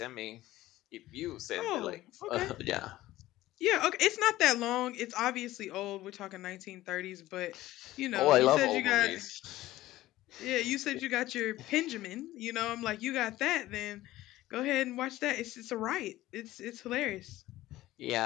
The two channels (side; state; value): right; quieter; 16.1 dB